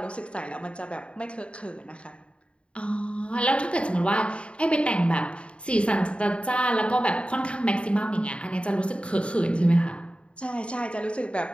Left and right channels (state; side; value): late; right; 0.058 ms